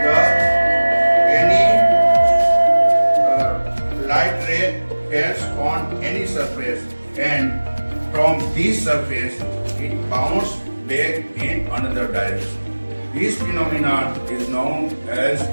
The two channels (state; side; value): inverted; both; correlation -1.00